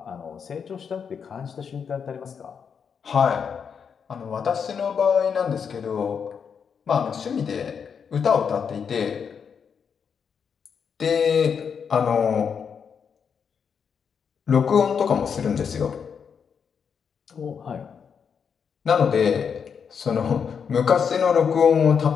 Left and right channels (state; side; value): quieter; right; 6.7 dB